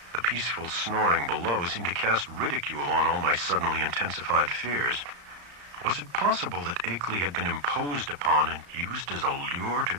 The peaceful snoring below seemed to cast ridicule on all my suddenly intensified fears. Was it possible that Akeley had been imposed upon and used as a lure to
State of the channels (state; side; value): late; left; 34 ms